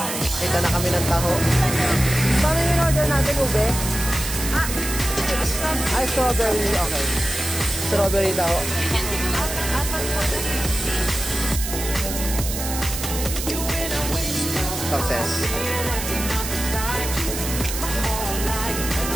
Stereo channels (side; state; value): right; noise; hiss, 6 dB below the sound